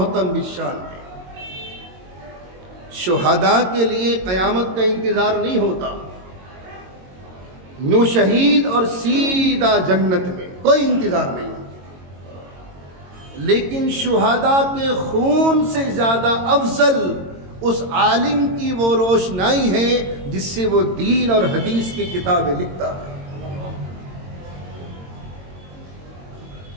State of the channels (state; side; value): late; left; 22 ms